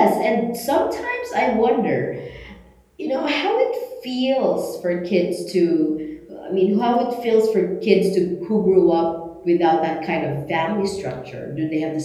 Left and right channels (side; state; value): both; identical; correlation 1.00